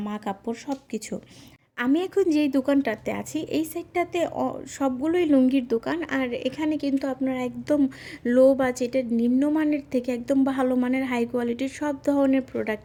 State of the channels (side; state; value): both; identical; correlation 1.00